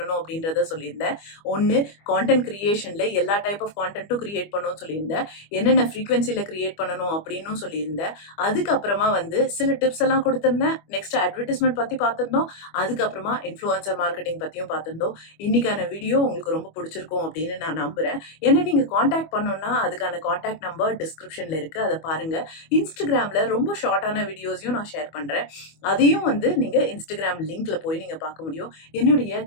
அப்படின்றத சொல்லியிருந்தேன். ஒன்னு, கான்டென்ட் கிரியேஷன்ல எல்லா டைப் ஆஃப் கான்டென்ட்டும் கிரியேட் பண்ணணும்னு சொல்லியிருந்தேன். என்னென்ன ஃப்ரீக்வன்சில கிரியேட் பண்ணணும் அப்படின்னு சொல்லியிருந்தேன். அதுக்கப்புறமா வந்து சில டிப்ஸ் எல்லாம் கொடுத்திருந்தேன். நெக்ஸ்ட் அட்வர்டைஸ்மெண்ட் பத்தி பார்த்திருந்தோம். அதுக்கப்புறமா இன்ஃப்ளூயன்சர் மார்க்கெட்டிங் பத்தியும் பார்த்திருந்தோம். இன்னைக்கான வீடியோ உங்களுக்கு ரொம்ப பிடிச்சிருக்கும் அப்படின்னு நான் நம்புறேன். என்ன நீங்க காண்டாக்ட் பண்ணணும்னா அதுக்கான காண்டாக்ட் நம்பர் டிஸ்கிரிப்ஷன்ல இருக்கு, அதை பாருங்க. இன்ஸ்டாகிராம்ல ரொம்ப ஷார்ட்டான வீடியோஸையும் நான் ஷேர் பண்றேன். அதையும் வந்து நீங்க இன்ஸ்டாகிராம் லிங்க்ல போய் நீங்க பார்க்க முடியும். என்னுடைய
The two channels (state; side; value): late; right; 25 ms